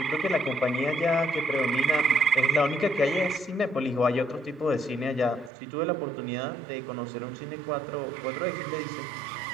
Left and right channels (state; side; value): drops out; left; at 5.5 s